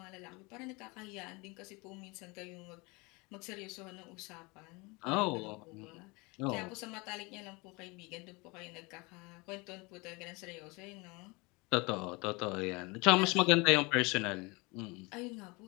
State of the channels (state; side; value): quieter; right; 26.5 dB